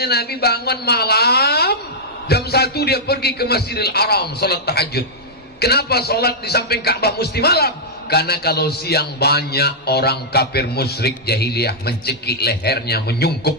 Nabi bangun malam jam 1 dia pergi ke Masjidil Haram salat tahajud. Kenapa salat di samping Ka'bah mesti malam? Karena kalau siang banyak orang kafir musyrik jahiliyah mencekik lehernya,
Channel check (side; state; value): both; normal; correlation -0.08